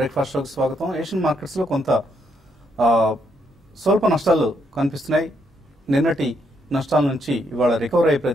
షోకి స్వాగతం. ఏషియన్ మార్కెట్స్ లో కొంత స్వల్ప నష్టాలు కనిపిస్తున్నాయి. నిన్నటి నష్టాల నుంచి ఇవాళ రికవర్ అయ్యే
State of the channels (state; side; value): normal; both; correlation 0.75